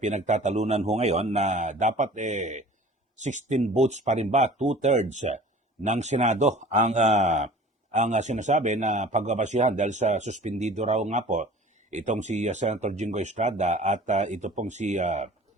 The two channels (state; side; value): normal; both; correlation 0.45